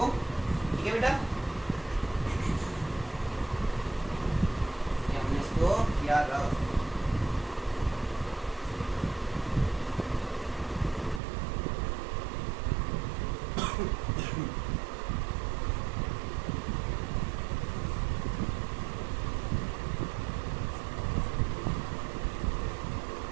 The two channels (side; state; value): left; drops out; at 11.2 s